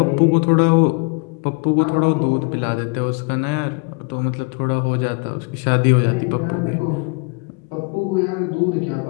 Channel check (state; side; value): quieter; right; 33.9 dB